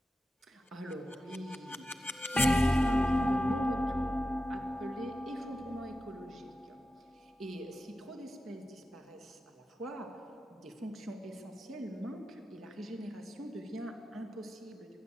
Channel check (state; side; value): normal; both; correlation 0.92